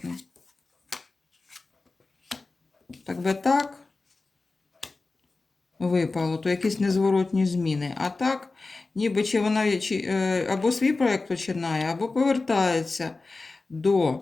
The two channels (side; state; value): right; quieter; 3.6 dB